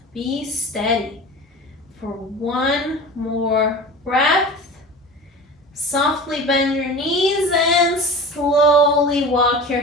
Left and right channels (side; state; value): both; normal; correlation 0.34